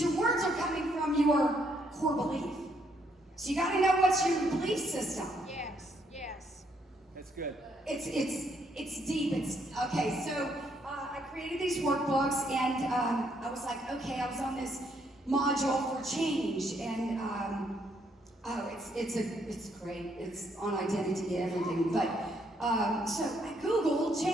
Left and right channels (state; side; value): normal; both; correlation 0.72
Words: your words are coming from your core belief. So you got to know what's your belief system. Yes, yes. That's good. It's deep. It's okay. So I created these workbooks, and I was like, okay, I was on this module for change, and it's great. It's on identity and everything. But so I Googled